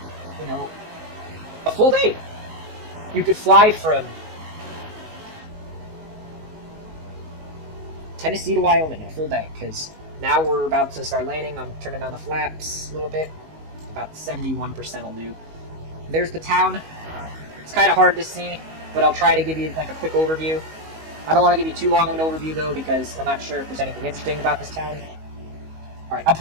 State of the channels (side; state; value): left; late; 19 ms